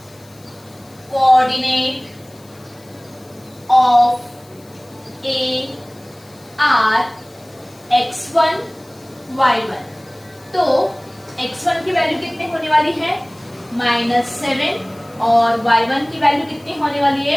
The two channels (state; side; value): noise; left; hiss, 27 dB below the sound